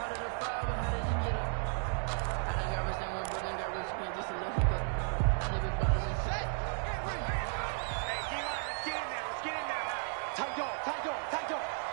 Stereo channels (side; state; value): left; silent; 55 dB below the other